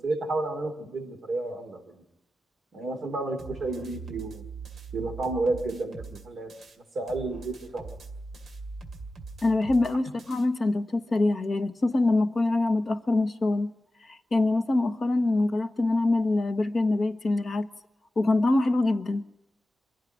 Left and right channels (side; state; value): both; normal; correlation 0.94